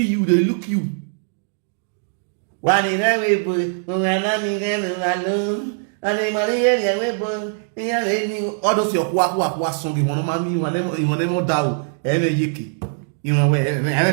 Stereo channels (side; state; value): left; silent; digital silence